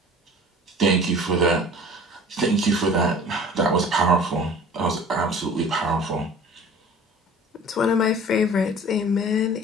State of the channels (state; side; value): normal; both; correlation 0.45